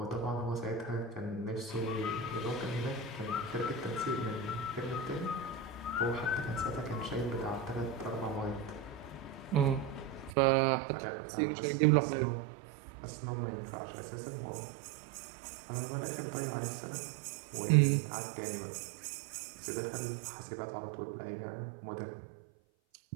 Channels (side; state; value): left; drops out; at 10.4 s